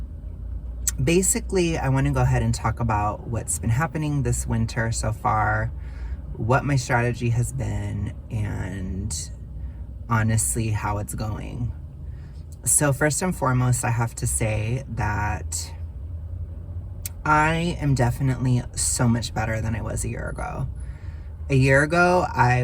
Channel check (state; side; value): identical; both; correlation 1.00